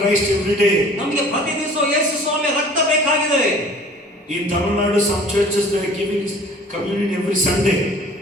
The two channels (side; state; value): both; normal; correlation 0.49